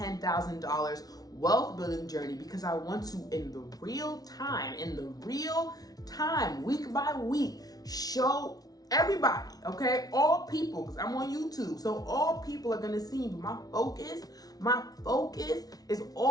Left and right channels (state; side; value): late; right; 0.18 ms